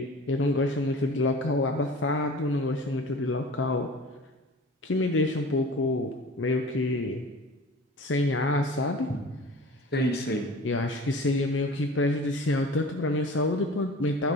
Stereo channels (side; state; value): both; normal; correlation 0.40